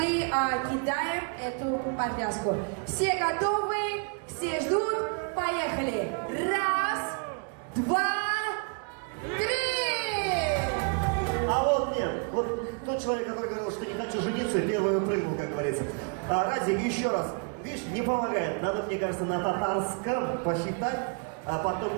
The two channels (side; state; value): left; quieter; 39.3 dB